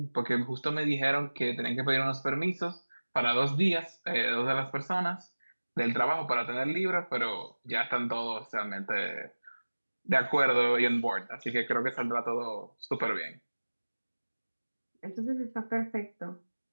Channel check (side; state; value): both; inverted; correlation -1.00